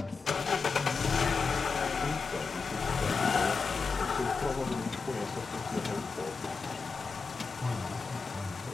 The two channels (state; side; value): quieter; right; 4.8 dB